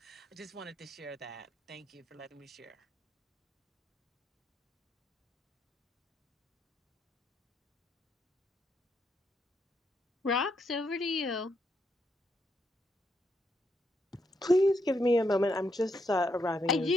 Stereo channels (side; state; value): both; normal; correlation 0.78